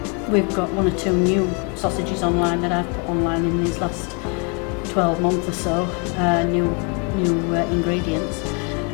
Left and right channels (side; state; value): right; quieter; 34.9 dB